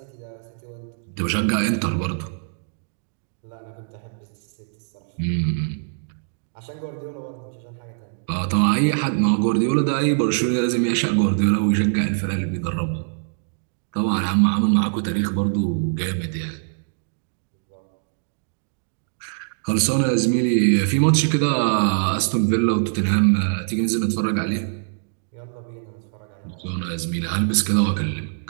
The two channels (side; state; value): left; silent; digital silence